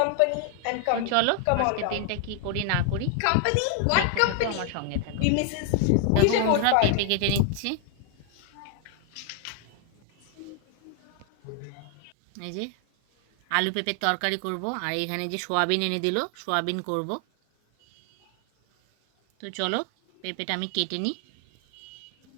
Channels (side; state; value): both; different; correlation 0.00